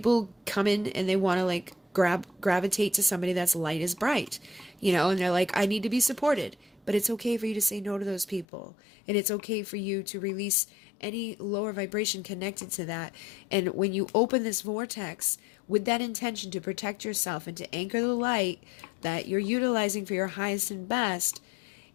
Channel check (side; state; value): right; drops out; at 8.5 s